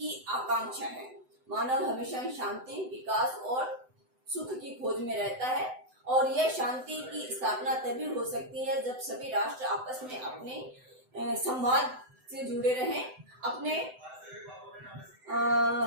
आकांक्षा है। मानव हमेशा शांति, विकास और सुख की खोज में रहता है और यह शांति की स्थापना तभी हो सकती है जब सभी राष्ट्र आपस में अपने संवाद से जुड़े रहें, अपने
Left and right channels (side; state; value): left; late; 7.9 ms